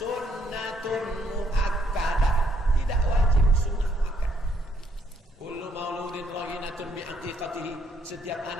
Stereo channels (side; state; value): both; normal; correlation 0.70